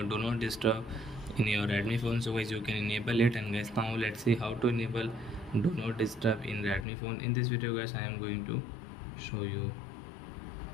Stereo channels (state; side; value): drops out; right; at 6.9 s